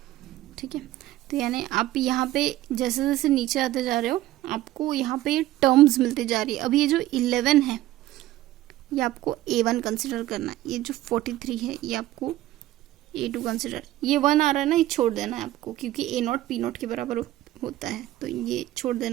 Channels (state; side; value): quieter; left; 15.3 dB